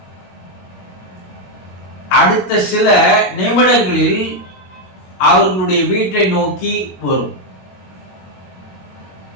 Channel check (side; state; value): right; late; 22 ms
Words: அடுத்த சில நிமிடங்களில் அவர்களுடைய வீட்டை நோக்கி வரும்.